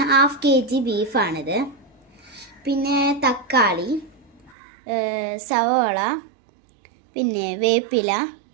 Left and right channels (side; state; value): left; drops out; at 4.5 s